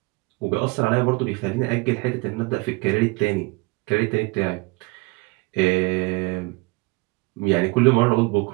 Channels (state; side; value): quieter; left; 25.8 dB